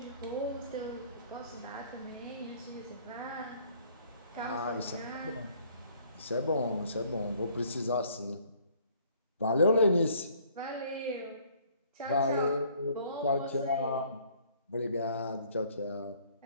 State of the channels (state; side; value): inverted; both; correlation -0.59